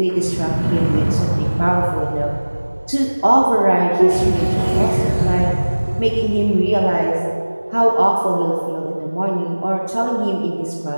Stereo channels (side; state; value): both; inverted; correlation -1.00